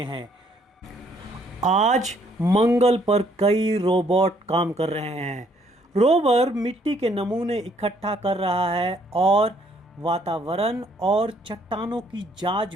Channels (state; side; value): normal; both; correlation 0.66